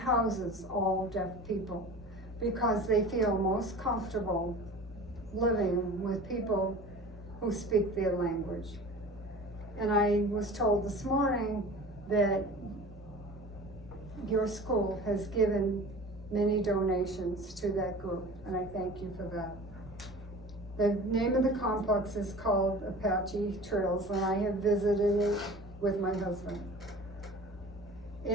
all deaf people because they feel most comfortable living with people who speak their language. And I was told this morning that your school has given many donations to that group, and I thank you for that. The name of the complex is called Apache Trails, and I have visited it with my husband.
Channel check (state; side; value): normal; both; correlation 0.39